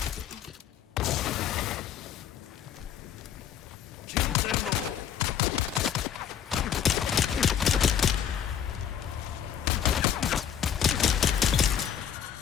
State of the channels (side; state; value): right; quieter; 9.0 dB